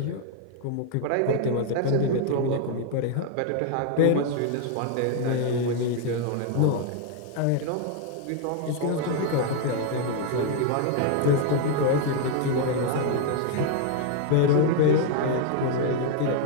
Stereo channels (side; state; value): both; different; correlation 0.00